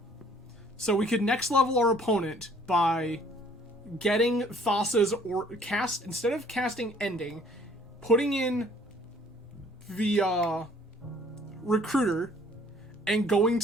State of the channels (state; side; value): normal; both; correlation 0.58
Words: So we could next level our opponent by getting Thassa's or cast, instead of casting Ending, putting in the Recruiter and going